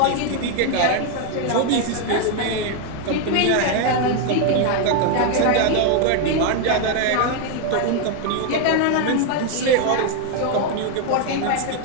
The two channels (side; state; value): both; different; correlation 0.01